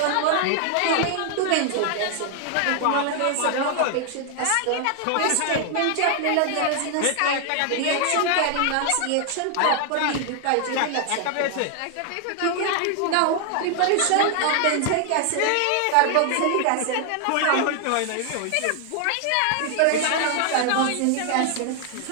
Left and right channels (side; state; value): both; different; correlation 0.00